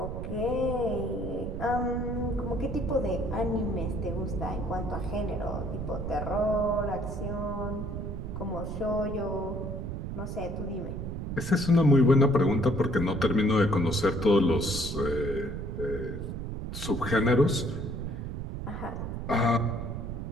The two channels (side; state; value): right; noise; rumble, 5 dB below the sound